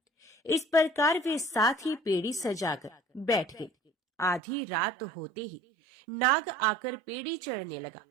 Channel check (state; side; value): drops out; left; at 4.4 s